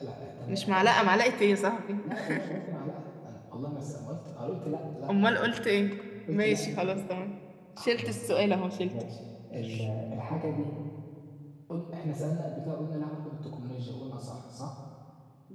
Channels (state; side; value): identical; both; correlation 1.00